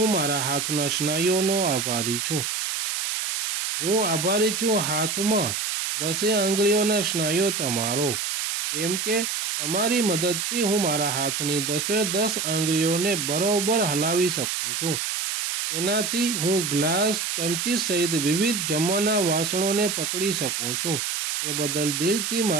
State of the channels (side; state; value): right; noise; hiss, 2 dB below the sound